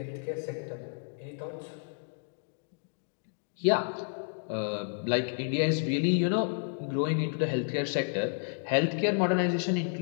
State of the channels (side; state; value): right; silent; digital silence